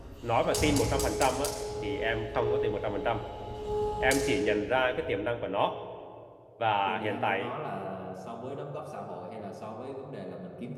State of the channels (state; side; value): identical; both; correlation 1.00